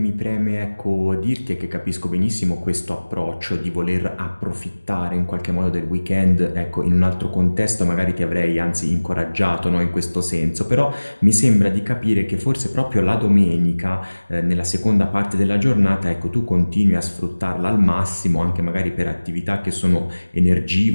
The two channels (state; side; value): inverted; both; correlation -1.00